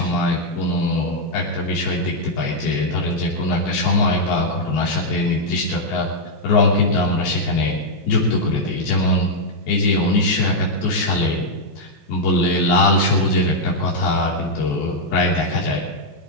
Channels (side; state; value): right; late; 14 ms